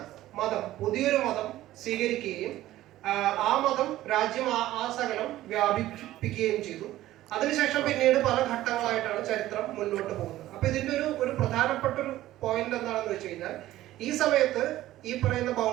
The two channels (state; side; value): quieter; left; 15.0 dB